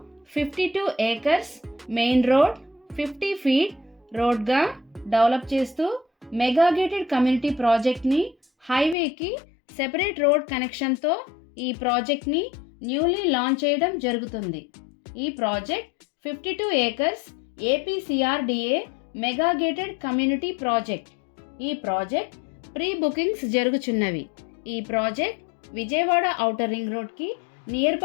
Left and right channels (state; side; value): drops out; right; at 9.0 s